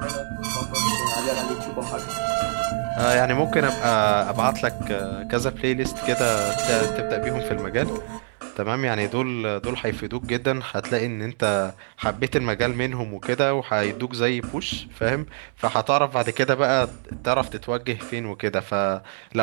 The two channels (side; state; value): left; silent; digital silence